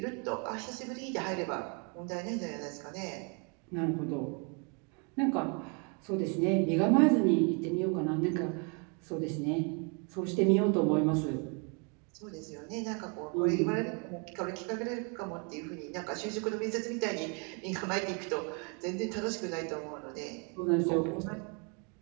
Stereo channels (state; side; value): quieter; left; 35.7 dB